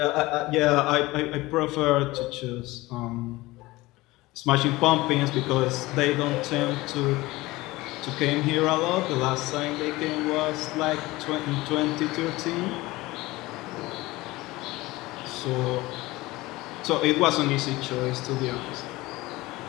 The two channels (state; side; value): quieter; right; 19.9 dB